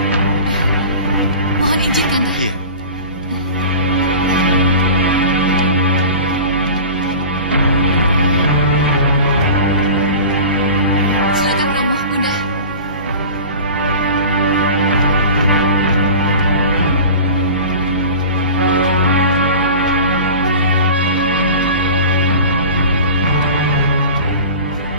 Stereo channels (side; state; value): both; inverted; correlation -0.36